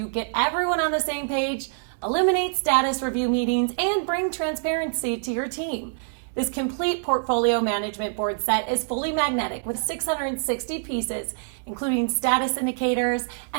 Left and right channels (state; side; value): silent; left; digital silence